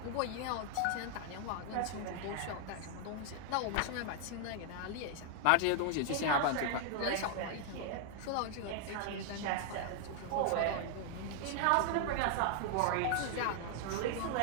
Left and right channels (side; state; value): both; different; correlation 0.00